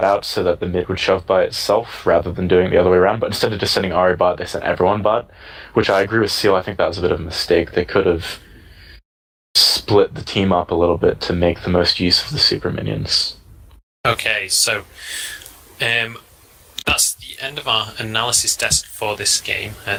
out so that the mid would shove by itself rather than doing it the other way around. But instead of just sending Ahri bot, they sent everyone bot, which I agree with Seal. I think that was a bit of a mistake. They could have split the team up a little bit to make the most use of the super minions. Okay, so that's the end of our analysis desk for this game.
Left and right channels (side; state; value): both; identical; correlation 1.00